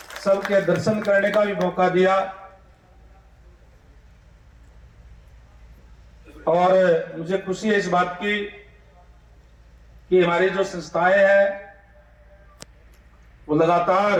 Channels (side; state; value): both; identical; correlation 1.00